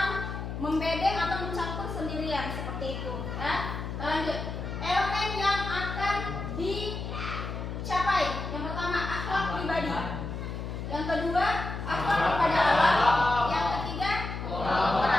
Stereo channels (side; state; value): left; noise; hum, 6 dB below the sound